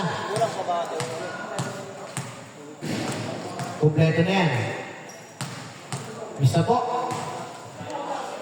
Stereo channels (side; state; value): both; identical; correlation 1.00